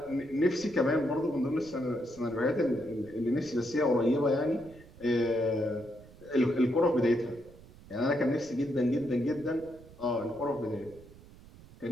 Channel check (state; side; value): noise; right; rumble, 21 dB below the sound